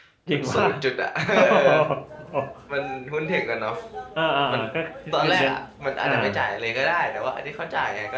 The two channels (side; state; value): both; identical; correlation 1.00